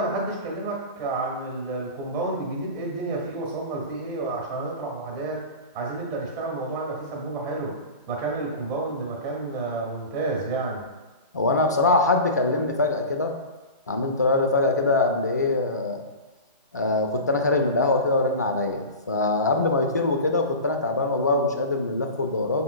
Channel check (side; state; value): both; inverted; correlation -0.31